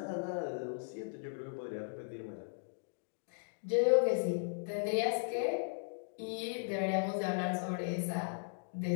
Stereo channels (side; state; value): right; silent; digital silence